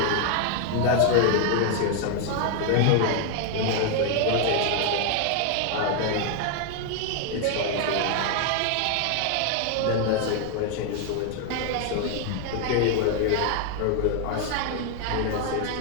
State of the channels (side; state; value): both; different; correlation 0.00